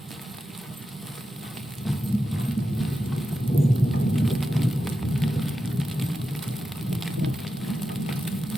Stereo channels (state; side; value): normal; both; correlation 0.90